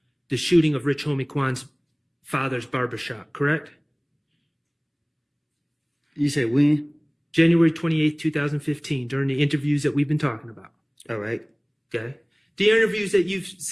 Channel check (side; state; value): both; identical; correlation 1.00